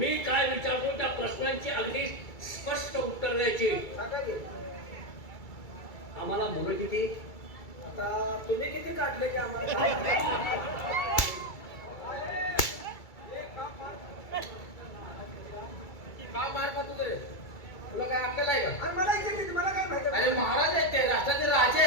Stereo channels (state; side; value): late; right; 2.3 ms